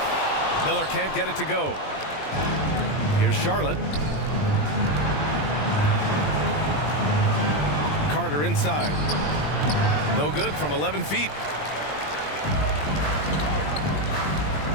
Miller can't get it to go. Here's Charlotte. Carter inside. No good from 11 feet.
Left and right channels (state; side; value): late; right; 20 ms